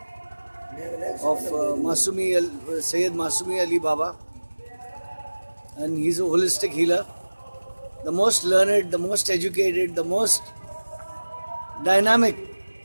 of Sayyid Masumi Ali Baba, and he's a holistic healer, the most learned, the most educated, the most dynamic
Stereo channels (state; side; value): inverted; both; correlation -1.00